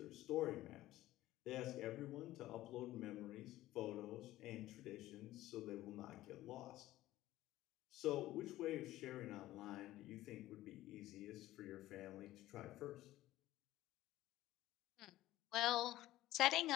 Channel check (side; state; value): right; quieter; 15.7 dB